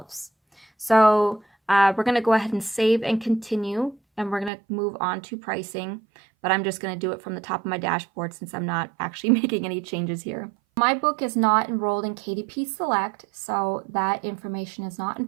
So we're going to go ahead and save and continue, and we're going to move on to pricing, but I'm just going to do it from the top of my dashboard since I'm not actually making any changes here. My book is not enrolled in KDP Select, so that information is not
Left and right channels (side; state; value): left; drops out; at 4.5 s